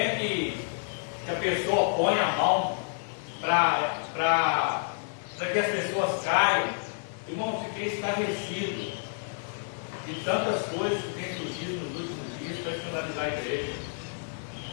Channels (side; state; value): right; silent; digital silence